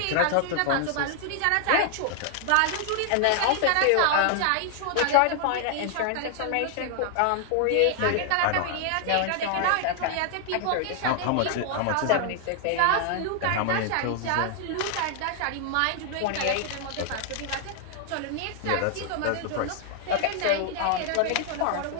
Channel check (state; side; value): different; both; correlation 0.00